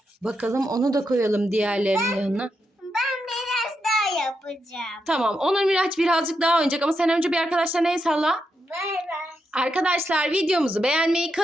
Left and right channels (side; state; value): both; normal; correlation 0.84